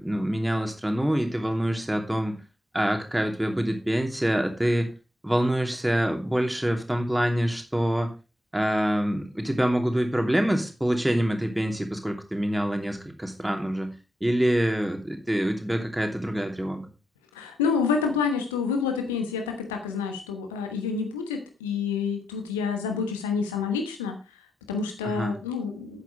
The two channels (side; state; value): both; normal; correlation 0.84